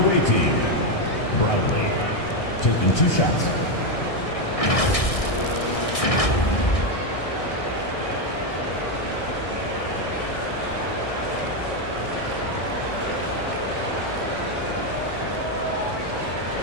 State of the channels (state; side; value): late; right; 1.6 ms